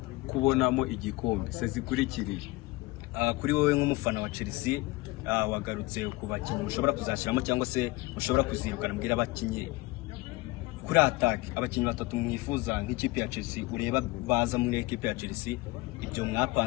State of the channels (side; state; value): right; quieter; 21.4 dB